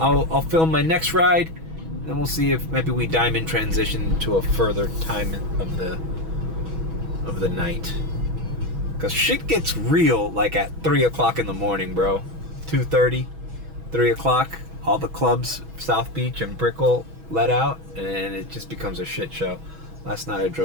film my next ride, then we'll see if maybe we diamond transition to a further time of the night. Cause shit gets real like at 3 o'clock in the morning, bro. 2:30, 3 o'clock. All the clubs, South Beach and Brickell, let out, and it just becomes a shit show. Last night I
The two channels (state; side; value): late; left; 6.2 ms